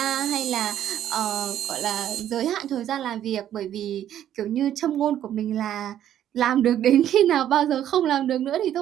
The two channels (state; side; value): quieter; left; 11.0 dB